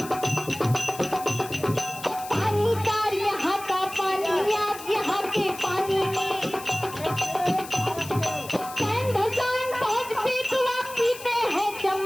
पानी कार यहाँ का पानी आप यहाँ के पानी में। चैन धसान पहुँचते तो आप पीते हैं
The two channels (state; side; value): noise; left; hiss, 14 dB below the sound